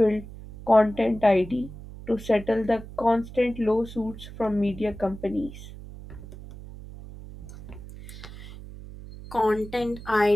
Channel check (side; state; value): right; noise; hum, 14 dB below the sound